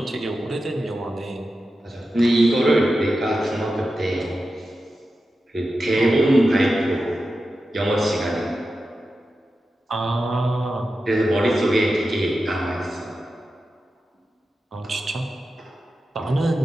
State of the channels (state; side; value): normal; both; correlation 0.91